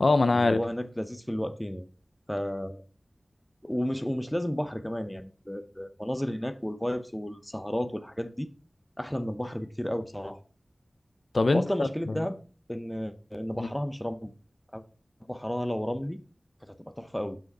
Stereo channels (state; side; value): normal; both; correlation 0.98